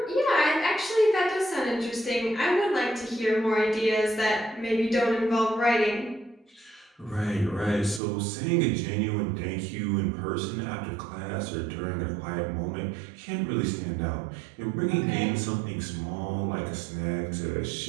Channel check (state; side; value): drops out; left; at 8.0 s